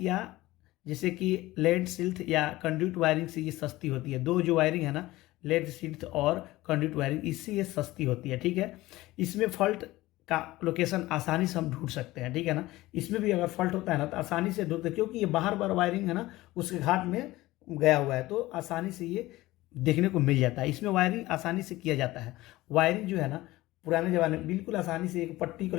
जैसे कि लेड सिल्थ या कंड्यूट वायरिंग से ये सस्ती होती है। दो जो वायरिंग है ना, लेड सिल्थ और कंड्यूट वायरिंग, इससे ये सस्ती होती है। ठीक है, इसमें फॉल्ट का लोकेशन आसानी से हम ढूंढ सकते हैं। ठीक है ना, इसमें भी अगर फॉल्ट होता है ना तो आसानी से ढूंढते, क्योंकि ये बाहर बार वायरिंग है ना उसके घाट में गया हुआ है, तो आसानी से ये देखने को मिल जाता है। इसमें वायरिंग आसानी से किया जाता है। वायरिंग जो है ना पुराने ज़माने में बिल्कुल आसानी से एक पट्टी को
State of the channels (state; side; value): quieter; right; 18.2 dB